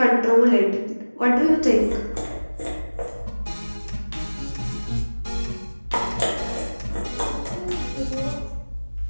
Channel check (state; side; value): inverted; both; correlation -1.00